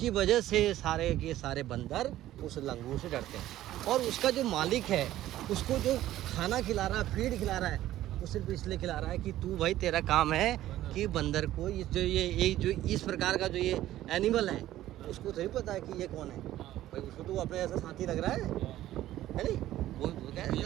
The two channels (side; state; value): left; quieter; 14.0 dB